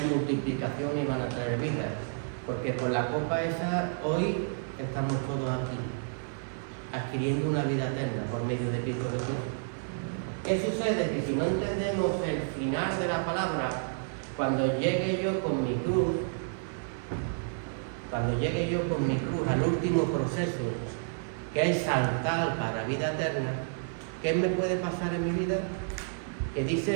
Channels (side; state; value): left; silent; 58 dB below the other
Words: y van a traer vida, porque por la copa esa hoy estamos todos aquí, adquiriendo una vida eterna por medio de Cristo Jesús. ¿Qué sucede? Que si no entendemos el final de la palabra, cuando llegue yo con mi cruz al último proceso, que es saltar para vida eterna, ¿qué me puede pasar en mi vida? Que